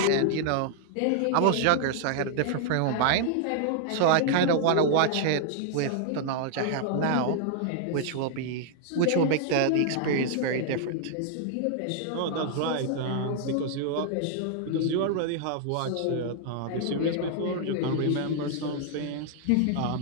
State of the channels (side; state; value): both; different; correlation -0.01